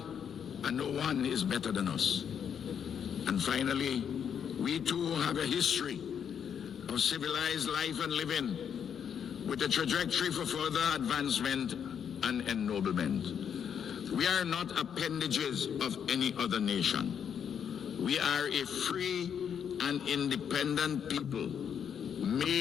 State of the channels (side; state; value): right; quieter; 8.0 dB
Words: and no one is better than us. And finally, we too have a history of civilized life and living with a trajectory for further advancement and ennoblement. We are not appendages of any other nation. We are a free and independent people